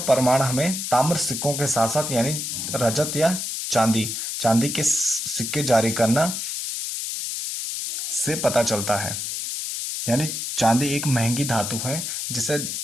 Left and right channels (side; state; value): left; noise; hiss, 4 dB below the sound